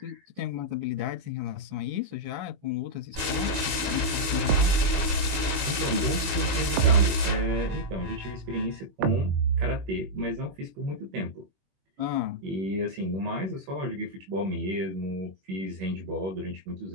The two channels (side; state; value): left; late; 21 ms